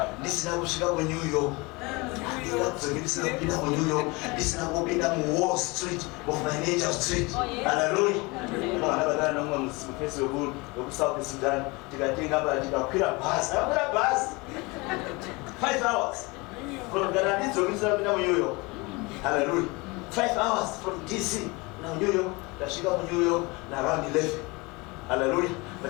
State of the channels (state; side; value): quieter; right; 25.5 dB